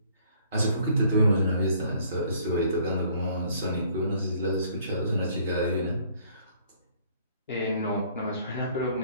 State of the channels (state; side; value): inverted; both; correlation -0.60